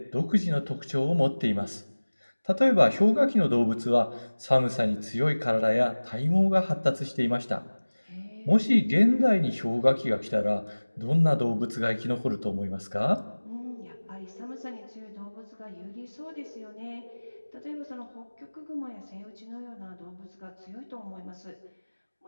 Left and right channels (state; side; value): inverted; both; correlation -1.00